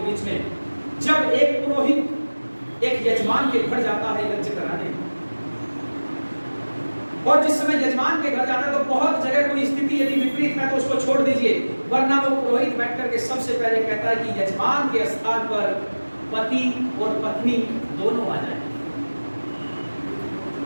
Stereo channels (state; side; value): inverted; both; correlation -1.00